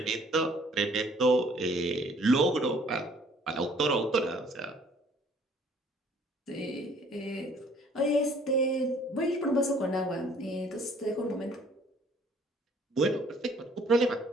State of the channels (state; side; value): normal; both; correlation 0.58